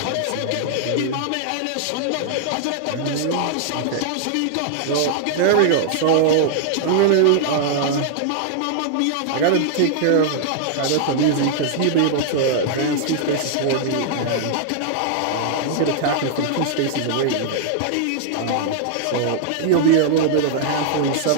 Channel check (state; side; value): different; both; correlation -0.01